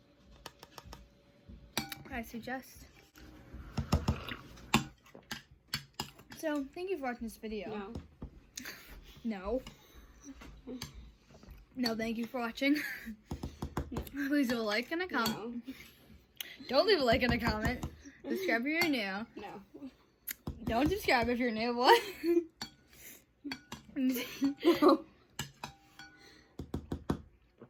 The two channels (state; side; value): identical; both; correlation 1.00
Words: I suggest. So, thank you for watching this video. No. No, thank you for watching. Please leave a like and a comment. No. Don't leave a like and a comment. Subscribe if you're new. No. Don't subscribe if you're new. What?